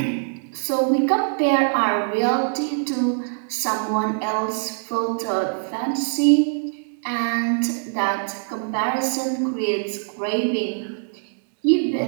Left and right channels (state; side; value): silent; left; digital silence